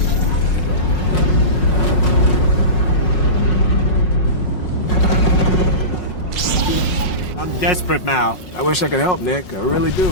Desperate, Mal. I wish I could help, Nick. I really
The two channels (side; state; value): right; late; 5.5 ms